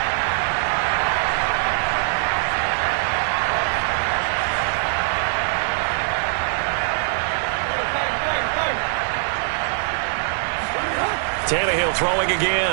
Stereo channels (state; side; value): silent; left; 64 dB below the other